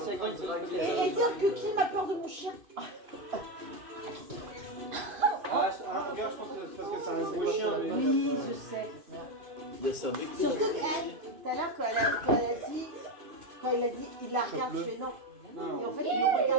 Agron, il se fait Et dire que Kim a peur de mon chien. Ah, je pense que c'est parce que c'est un gros chien. Mais... Oui, je sais. Il y a ça avec Surtout que, tout à l'heure, quand il a dit, il la regarde, je fais non. Et en fait, il me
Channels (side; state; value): left; late; 2.5 ms